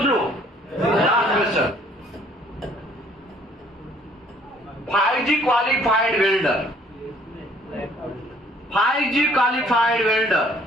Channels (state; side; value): normal; both; correlation 0.60